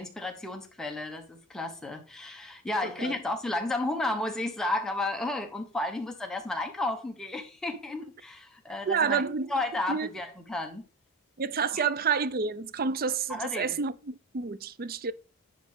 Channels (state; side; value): normal; both; correlation 0.32